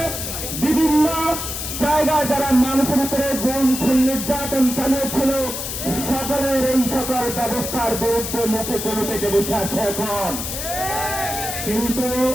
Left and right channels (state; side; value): noise; left; hiss, 5 dB below the sound